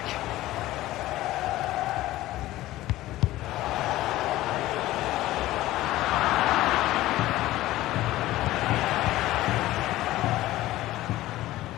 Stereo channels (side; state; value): right; quieter; 16.2 dB